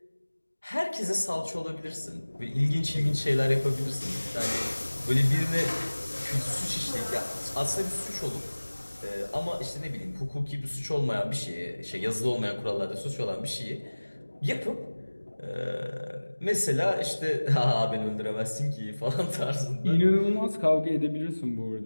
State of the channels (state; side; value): inverted; both; correlation -1.00